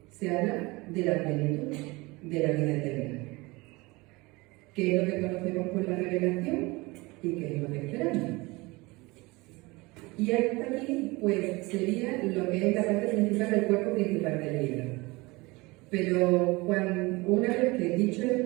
se habla de la plenitud de la vida eterna, que es lo que conocemos por la revelación y que es lo que esperamos. Y hasta aquí, pues, sería lo que es la parte principal del cuerpo principal del libro. Pero una vez que he dicho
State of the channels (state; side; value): quieter; left; 23.5 dB